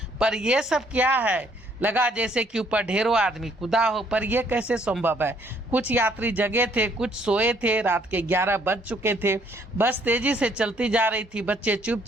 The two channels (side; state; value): both; normal; correlation 0.65